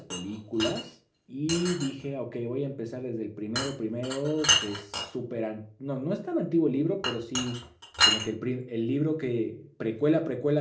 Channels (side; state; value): both; identical; correlation 1.00